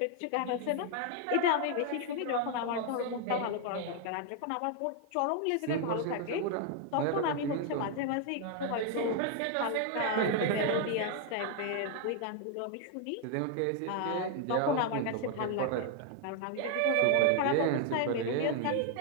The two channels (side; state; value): both; different; correlation 0.00